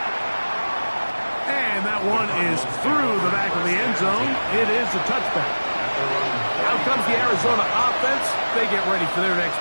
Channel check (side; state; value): both; inverted; correlation -1.00